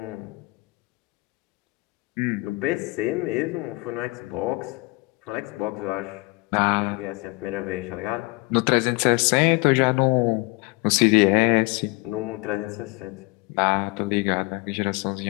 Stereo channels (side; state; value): right; quieter; 25.4 dB